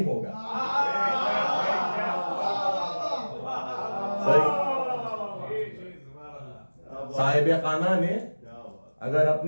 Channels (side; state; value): both; inverted; correlation -1.00